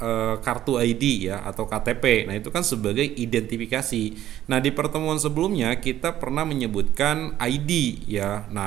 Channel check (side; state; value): left; quieter; 12.6 dB